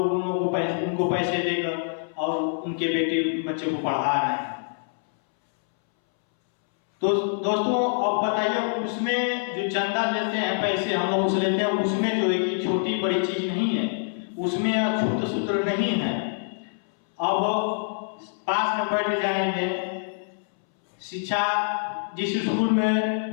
उनको पैसे देकर और उनके बेटे बच्चे को पढ़ा रहे हैं। तो दोस्तों, अब बताइए, उसमें जो चंदा लेते हैं, पैसे हम लोग उसे लेते हैं, उसमें जो है कि छोटी बड़ी चीज नहीं है, उसमें अछूत सूत्र नहीं है। अब पास में बैठ जाएंगे, शिक्षा जिस स्कूल में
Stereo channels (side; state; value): right; silent; 61 dB below the other